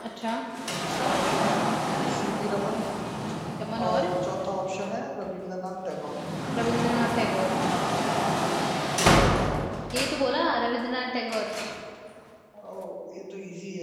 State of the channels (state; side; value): identical; both; correlation 1.00